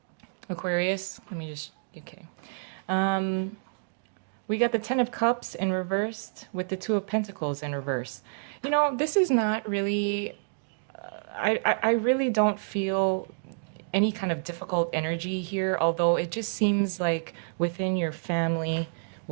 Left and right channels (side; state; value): left; silent; digital silence